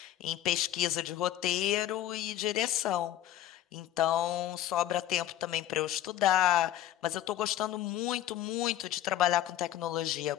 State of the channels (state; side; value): quieter; right; 12.5 dB